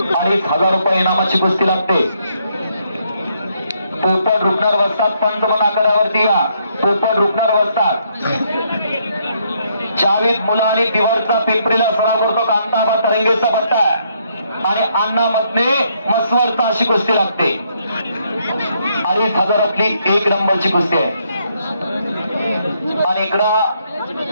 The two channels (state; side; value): inverted; both; correlation -0.73